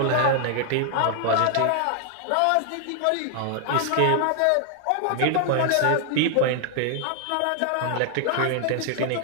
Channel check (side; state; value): both; different; correlation 0.00